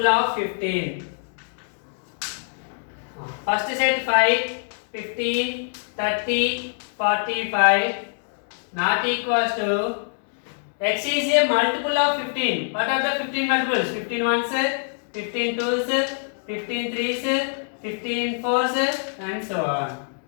of 15. First set 5, 15, 30, 45 not equals to x is a multiple of 15. What are the 15 multiples? 15 ones, 15 twos, 15 threes, 15 fours, and so on.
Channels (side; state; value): right; silent; digital silence